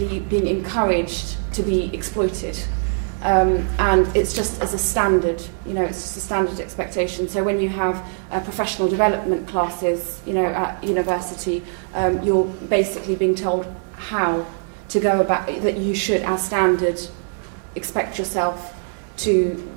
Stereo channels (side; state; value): left; silent; digital silence